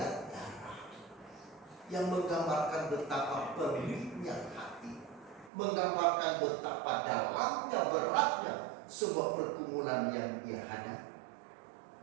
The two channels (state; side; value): drops out; left; at 5.5 s